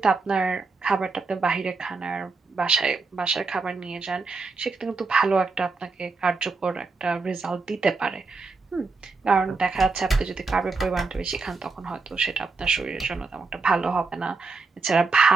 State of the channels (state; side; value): quieter; left; 4.1 dB